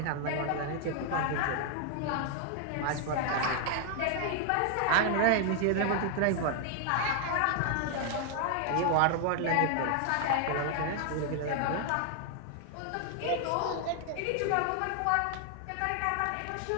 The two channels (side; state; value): both; different; correlation 0.00